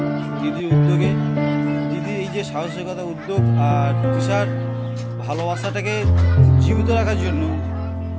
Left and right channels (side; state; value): both; identical; correlation 1.00